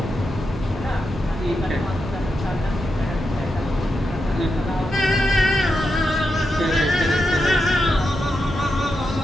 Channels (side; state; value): both; normal; correlation 0.86